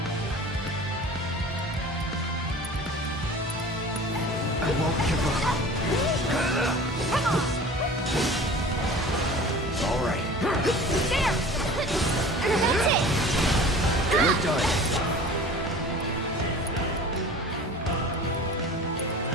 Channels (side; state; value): both; normal; correlation 0.41